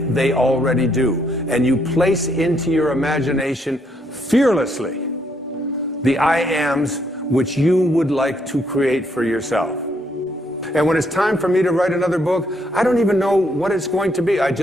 they already do. And you place into your imagination fearlessly the I ams which you would like to create for yourself. And when it's time for me to write another book, I don't even know what it's going to be. I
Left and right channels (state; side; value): normal; both; correlation 0.72